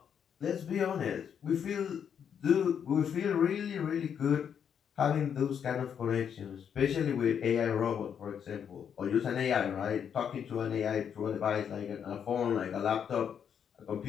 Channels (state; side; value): quieter; right; 8.0 dB